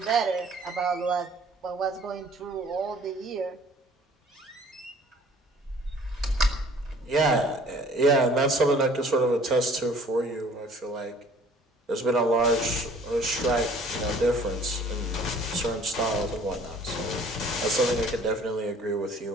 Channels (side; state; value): both; normal; correlation 0.54